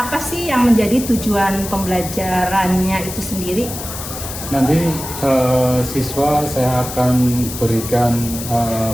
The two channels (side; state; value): left; noise; hiss, 9 dB below the sound